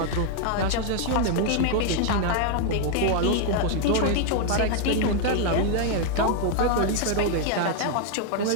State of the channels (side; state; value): both; different; correlation 0.00